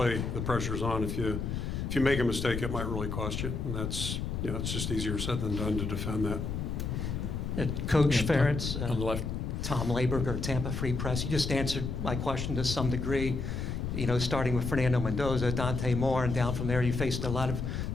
the pressure's on. If you make a mistake, it might really cost you, and that's, you know, it's just easier said than done to defend that. Coach Ferentz, On the left. Tom Laberger, Tampa Free Press. You just answered my question to some degree. You know, starting with Fernando Mendoza, Dante Moore, and down from there, you faced a lot of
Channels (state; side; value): noise; left; rumble, 3 dB below the sound